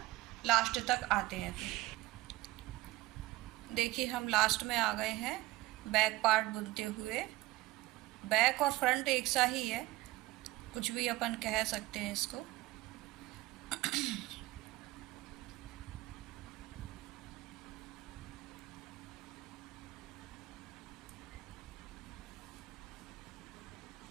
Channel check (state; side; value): quieter; left; 18.3 dB